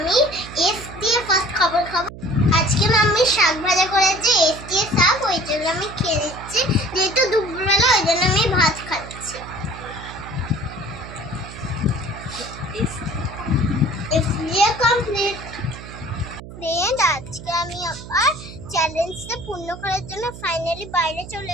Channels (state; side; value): noise; right; hum, 14 dB below the sound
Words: এস দিয়ে ফার্স্ট খাবার খাবো। আজকে মাম্মি শাক ভাজা করেছে, এস দিয়ে শাক, ওই জন্য আমি খেয়ে নিচ্ছি। যেহেতু দুপুরবেলা ওই জন্য আমি ভাত খাচ্ছি। কমপ্লিট ফ্রেন্ড, আজকে আমি আবার চ্যালেঞ্জটা পূর্ণ করার জন্য ফাইনালি বাইরে